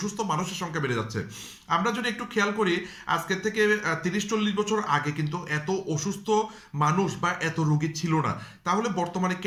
মানুষের সংখ্যা বেড়ে যাচ্ছে। আমরা যদি একটু খেয়াল করি, আজকের থেকে 30-40 বছর আগে কিন্তু এত অসুস্থ মানুষ বা এত রোগী ছিল না। তাহলে বর্তমানে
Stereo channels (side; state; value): both; identical; correlation 1.00